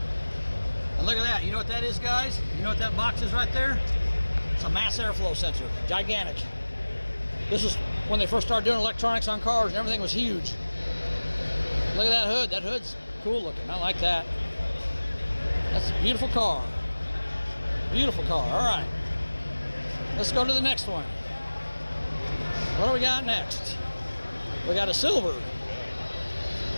And look at that. You know what that is, guys? You know what that box is right there? It's a mass airflow sensor. Gigantic. This is when they first started doing electronics on cars and everything was huge. Look at that hood. That hood's cool looking. I like that. That's a beautiful car. Beautiful car. All right. Let's go to the next one. What do we got next? We got a silver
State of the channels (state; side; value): inverted; both; correlation -1.00